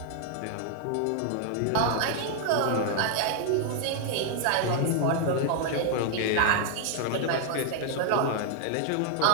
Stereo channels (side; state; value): both; different; correlation 0.00